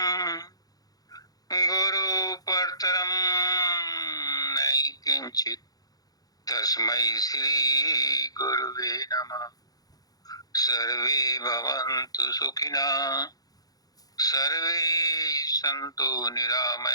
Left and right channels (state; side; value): late; right; 0.18 ms